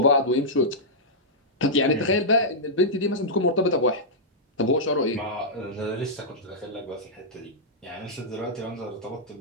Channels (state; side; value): normal; both; correlation -0.11